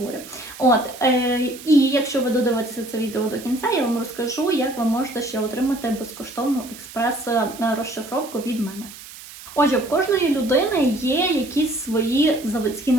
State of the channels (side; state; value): right; noise; hiss, 16 dB below the sound